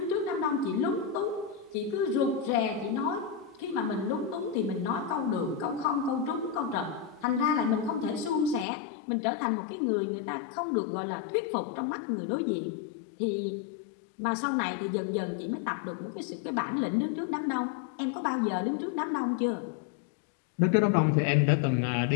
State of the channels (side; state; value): right; drops out; at 8.7 s